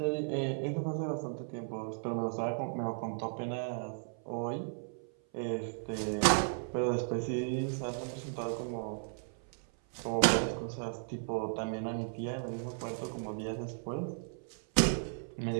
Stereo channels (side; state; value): left; silent; 54 dB below the other